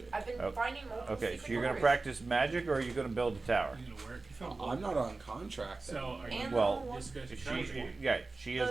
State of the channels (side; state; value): left; quieter; 3.6 dB